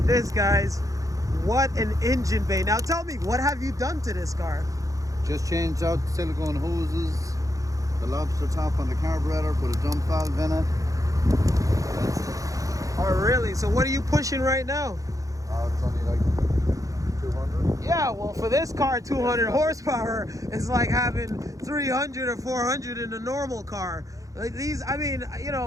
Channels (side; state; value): left; late; 0.16 ms